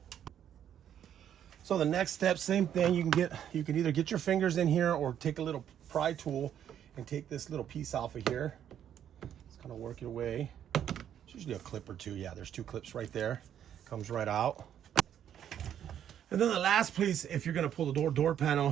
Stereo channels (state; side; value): quieter; left; 9.8 dB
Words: So the next step, same thing. You can either get your fingers in here or take a little pry tool and take this little piece off of here. Just kind of work your way. It's usually a clip or two. Yeah, there's two clips right there. Comes right out. And then the last piece, if you're going to pull the door